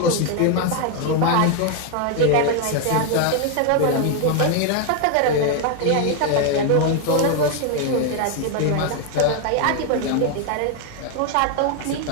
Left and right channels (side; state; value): both; different; correlation 0.01